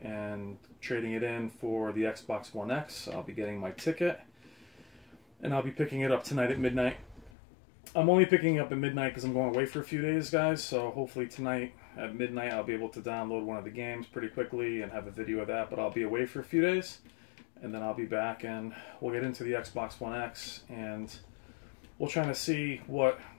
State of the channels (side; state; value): right; drops out; at 7.3 s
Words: and trading it in for the Xbox One X. I'll be getting my ticket and I'll be picking it up tonight at midnight. I'm only picking it up at midnight because I'm going away for a few days, guys, so hopefully tonight at midnight I'll be able to download one of the games pretty quickly and have a video of that, but I'll be away for a few days, and then I'll be back and we'll get into the Xbox One X, and we'll try to see what